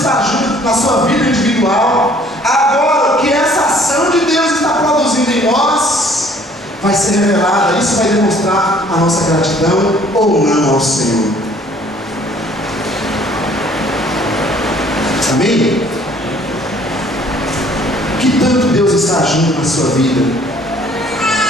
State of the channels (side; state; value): both; normal; correlation 0.57